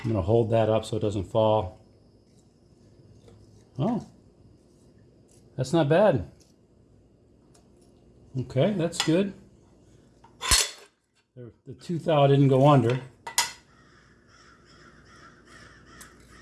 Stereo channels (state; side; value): identical; both; correlation 1.00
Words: going to hold that up so it doesn't fall. Oh, that's not bad. Okay, that's good. The tooth thou didn't go under.